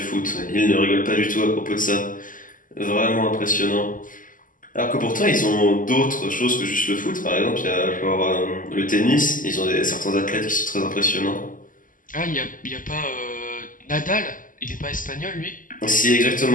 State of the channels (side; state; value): right; late; 0.39 ms